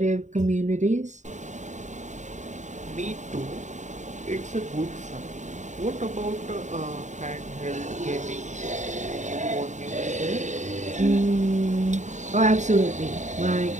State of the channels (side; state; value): left; late; 0.35 ms